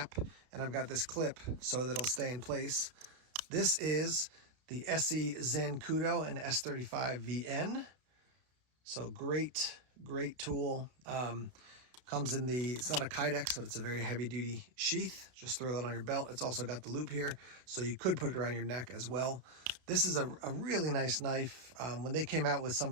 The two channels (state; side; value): late; left; 32 ms